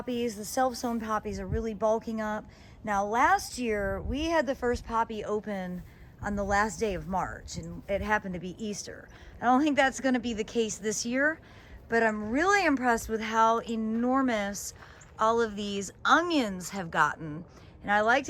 The self-sown poppies are really bulking up. Now last year, we had the first poppy open on the last day of March, and it happened to be Easter. I don't think that's gonna be the case this year, but I'm really impressed with how enormous all of these onions have gotten. And I like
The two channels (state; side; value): identical; both; correlation 1.00